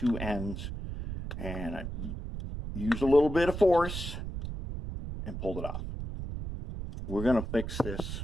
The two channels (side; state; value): right; noise; rumble, 6 dB below the sound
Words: ends and I used a little bit of force and pulled it off. We're going to fix